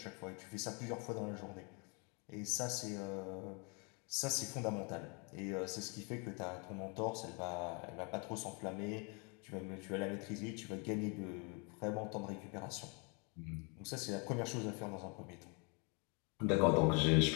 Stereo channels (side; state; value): right; quieter; 33.7 dB